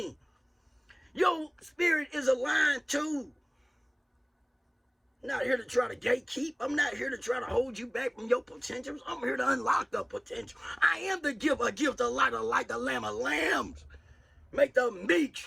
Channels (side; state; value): both; identical; correlation 1.00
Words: Your spirit is aligned too. I'm not here to try to gatekeep. I'm not here to try to hold you back from your potentials. I'm here to unlock the potential. I am the gift, a gift, a light, the lamb of lambs. Make the meek